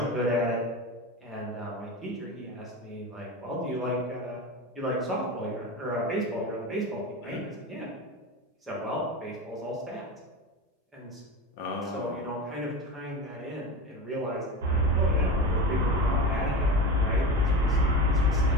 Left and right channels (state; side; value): normal; both; correlation 0.27